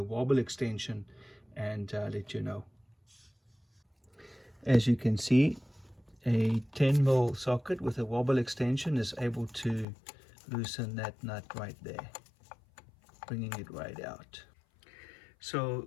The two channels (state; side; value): drops out; right; at 9.9 s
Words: wobble extension, and let you know. As you can see, a 10mm socket with a wobble extension is able to loosen that nut right there, bringing it right out. So